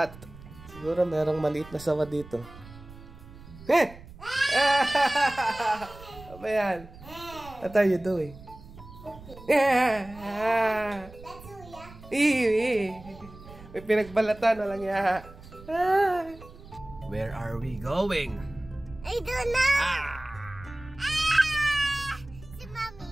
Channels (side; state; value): right; noise; rumble, 18 dB below the sound